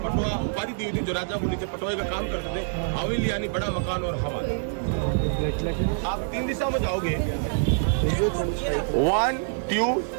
पटुआ उपाधि दी हुई थी जो राजा को नीचे पटुआ का काम करते थे। हवेली यानी बड़ा मकान और हवा। आप 3 दिशा में जाओगे, 1, 2,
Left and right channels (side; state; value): left; silent; digital silence